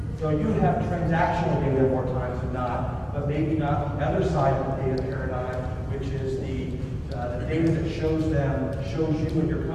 So you have transactional data more times than not, but maybe not the other side of the data paradigm, which is the data that shows you and your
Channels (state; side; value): identical; both; correlation 1.00